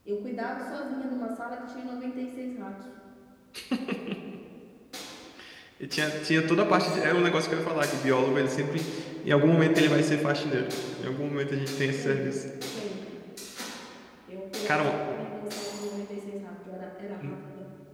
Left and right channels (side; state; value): both; identical; correlation 1.00